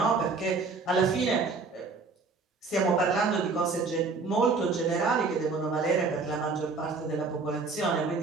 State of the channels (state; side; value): quieter; left; 4.3 dB